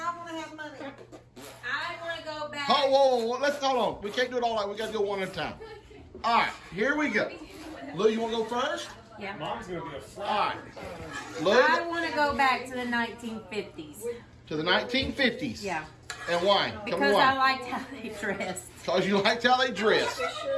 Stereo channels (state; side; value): identical; both; correlation 1.00